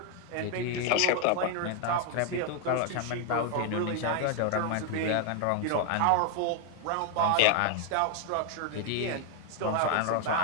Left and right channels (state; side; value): different; both; correlation 0.01